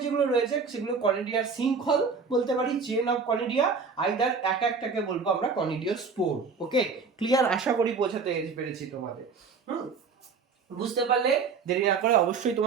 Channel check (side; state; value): left; quieter; 5.1 dB